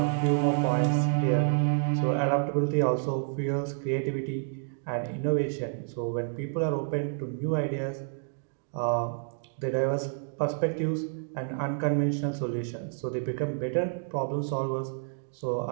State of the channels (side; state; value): left; silent; digital silence